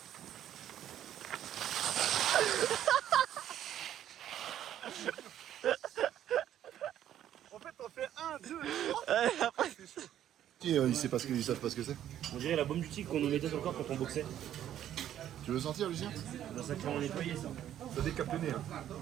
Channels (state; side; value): quieter; left; 11.2 dB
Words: En fait, on fait 1, 2, 3. après... Ils savent pas ce que c'est. On dirait la bombe du tigre qu'on nous mettait sur le corps quand on boxait. Tu veux sentir, Lucien? Dans ça qu'on nettoyait ça. Ça décape le nez. Hein.